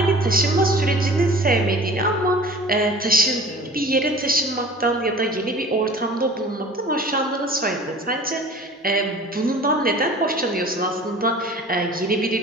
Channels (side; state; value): both; normal; correlation 0.43